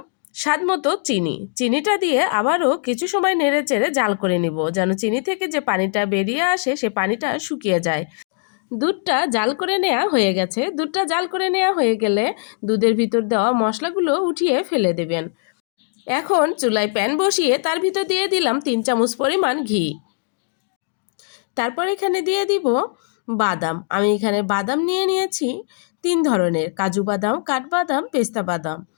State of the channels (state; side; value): silent; right; digital silence